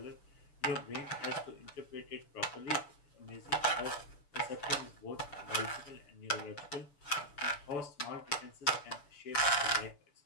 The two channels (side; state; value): right; late; 6.9 ms